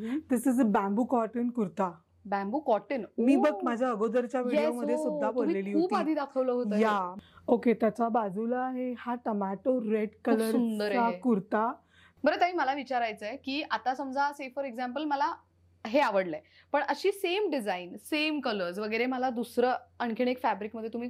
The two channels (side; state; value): both; identical; correlation 1.00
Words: This is a bamboo cotton kurta. Bamboo cotton. मी बघ माझ्या अगोदरच्या व्हिडिओ मध्ये सुद्धा बोललेली होती. खूप आधी दाखवलं होतं. या ओके. त्याच्या बाजूला आहे हा टमॅटो रेड कलरचा कुर्ता. बरं ताई मला विचारायचंय की आता समजा से फॉर एक्झाम्पल मला हे आवडलंय पण अशी सेम डिझाईन सेम कलर्स वगैरे मला दुसरं आणखीन एक फॅब्रिक मध्ये तुम्ही